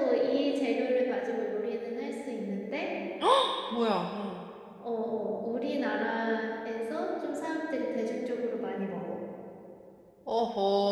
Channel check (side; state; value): both; identical; correlation 1.00